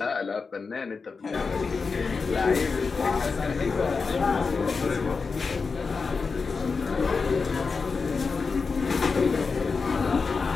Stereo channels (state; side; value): quieter; right; 4.7 dB